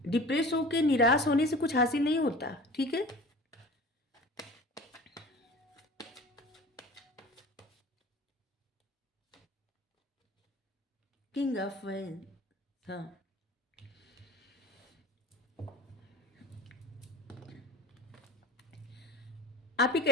डिप्रेस होके, निराश होने से कुछ हासिल नहीं होता, ठीक है? किंग ऑफ वाइन्स, हाँ। आप एक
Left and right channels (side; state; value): both; normal; correlation 0.40